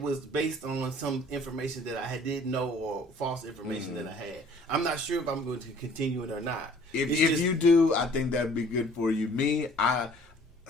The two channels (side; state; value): both; normal; correlation 0.54